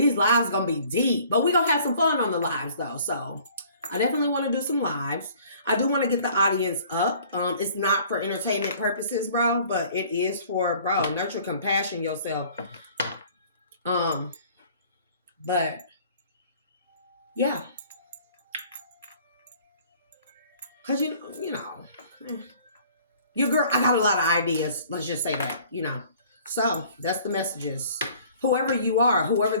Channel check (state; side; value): inverted; both; correlation -0.54